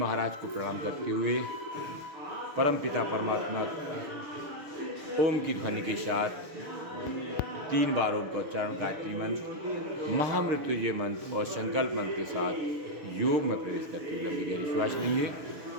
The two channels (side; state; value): left; late; 6.6 ms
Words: को प्रणाम करते हुए परम पिता परमात्मा ओम की ध्वनि के साथ 3 बार ओम का उच्चारण, गायत्री मंत्र, महामृत्युंजय मंत्र और संकल्प मंत्र के साथ योग में प्रवेश करते हुए लंबी गहरी श्वास लेंगे।